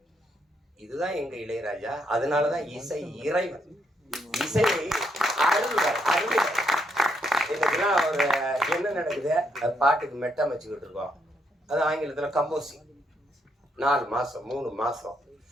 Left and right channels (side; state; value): both; normal; correlation 0.76